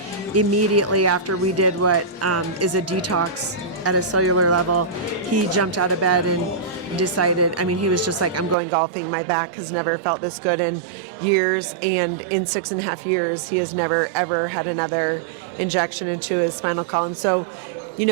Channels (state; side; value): drops out; left; at 8.6 s